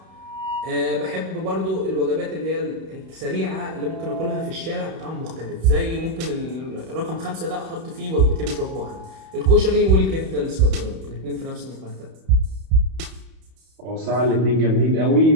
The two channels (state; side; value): late; left; 31 ms